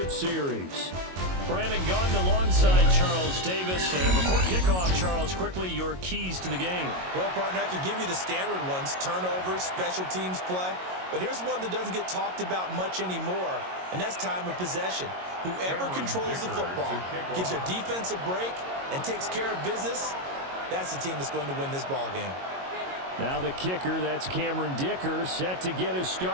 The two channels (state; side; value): late; left; 22 ms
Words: series. Brandon Gaudin alongside Charles Davis. And before kickoff, Charles, quickly your keys to the game. Well, partner, I could give you the standard ones, turnovers, special teams play. But here's one that doesn't get talked about much anymore, and that's time of possession. Whoever controls the football, gives their defense a break, and takes care of business, that's the team that's going to win this ball game. Now the kicker, that's Cameron Dicker, set to get us